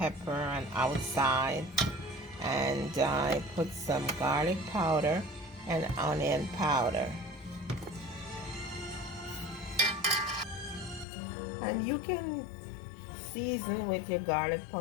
and outside, and I put some garlic powder and onion powder. And you can season with your garlic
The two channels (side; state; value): right; drops out; at 11.1 s